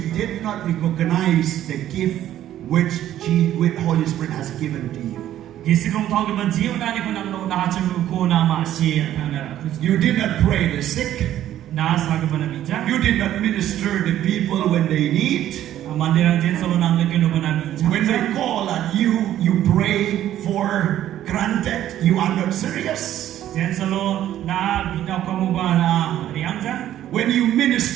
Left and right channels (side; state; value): left; quieter; 12.2 dB